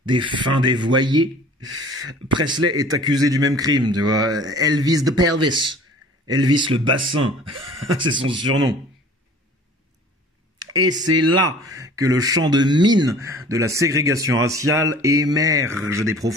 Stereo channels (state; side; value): normal; both; correlation 0.48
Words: des fins dévoyées. Presley est accusé du même crime, tu vois. Elvis the pelvis. Elvis le bassin. C'est son surnom. Et c'est là que le champ de mine de la ségrégation raciale émerge des